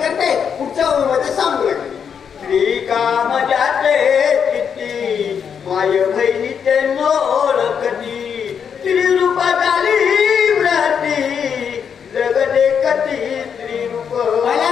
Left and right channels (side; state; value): right; quieter; 7.3 dB